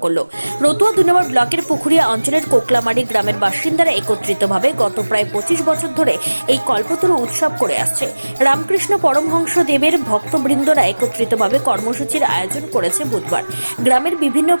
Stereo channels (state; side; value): inverted; both; correlation -1.00